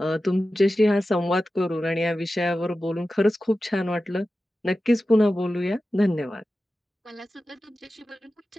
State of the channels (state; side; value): normal; both; correlation 0.94